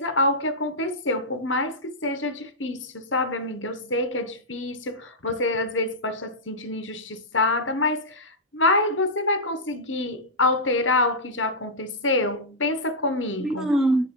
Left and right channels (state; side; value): normal; both; correlation -0.07